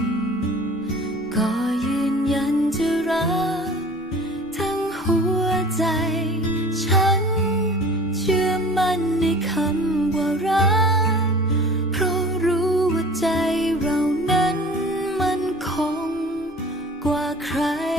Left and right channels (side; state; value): both; normal; correlation 0.44